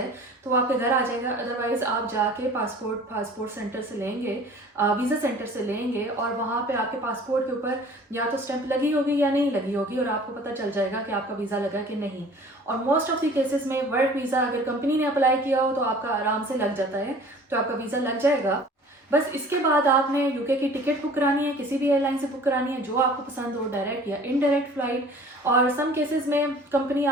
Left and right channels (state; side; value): normal; both; correlation 0.47